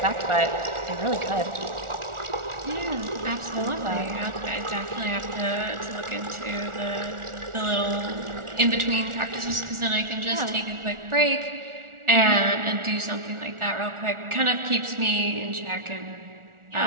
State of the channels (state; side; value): late; left; 1.4 ms